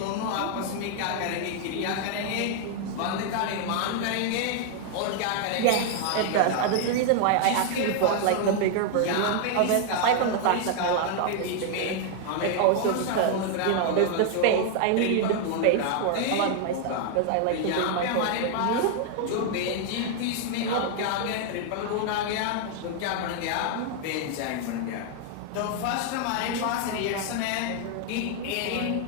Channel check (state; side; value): different; both; correlation 0.00